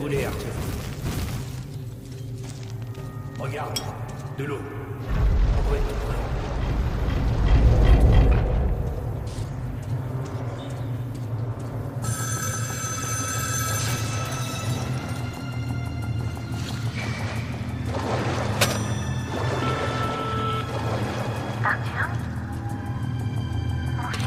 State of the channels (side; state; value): both; identical; correlation 1.00